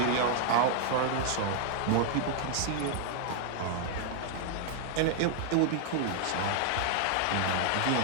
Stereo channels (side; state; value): both; different; correlation 0.00